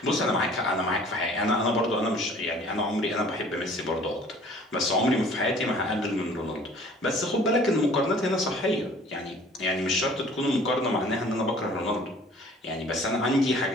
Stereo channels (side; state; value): both; normal; correlation 0.52